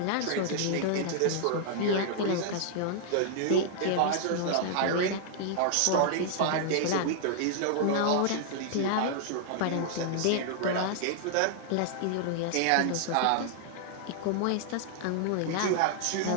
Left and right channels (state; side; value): different; both; correlation -0.01